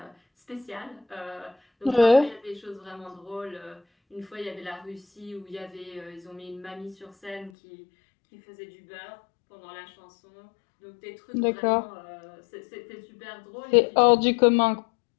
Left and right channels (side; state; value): right; drops out; at 7.5 s